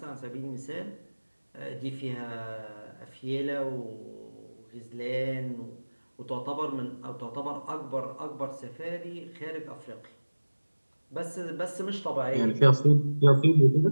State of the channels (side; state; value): both; inverted; correlation -1.00